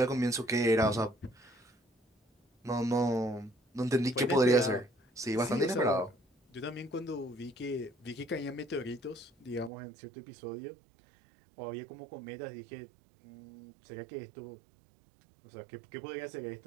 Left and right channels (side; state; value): left; drops out; at 9.7 s